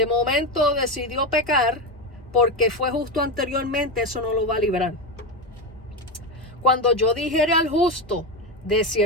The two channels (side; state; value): both; normal; correlation 0.14